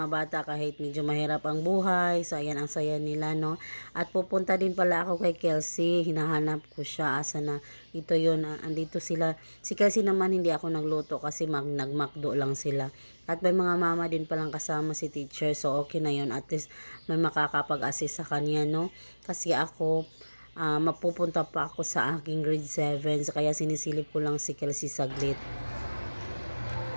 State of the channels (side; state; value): both; inverted; correlation -1.00